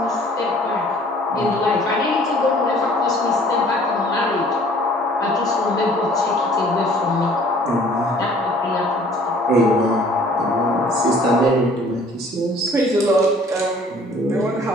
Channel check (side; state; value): both; normal; correlation 0.54